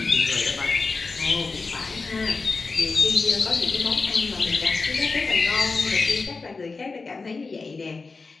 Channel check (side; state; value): right; quieter; 4.1 dB